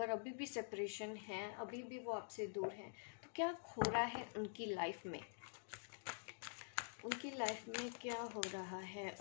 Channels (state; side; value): silent; right; digital silence